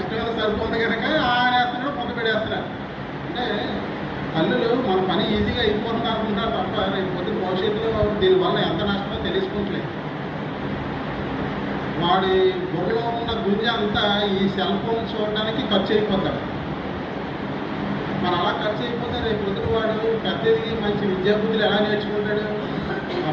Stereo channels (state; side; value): identical; both; correlation 1.00